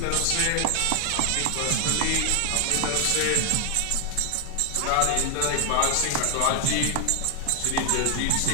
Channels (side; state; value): both; different; correlation 0.00